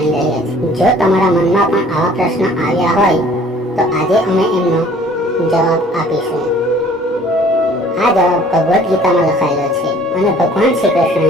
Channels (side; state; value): both; normal; correlation 0.54